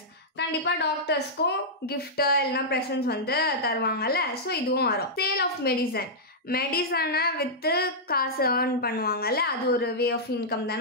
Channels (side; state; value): both; normal; correlation -0.09